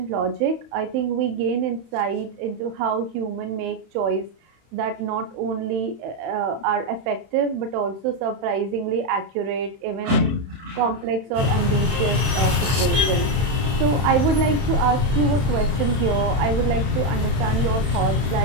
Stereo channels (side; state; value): left; late; 31 ms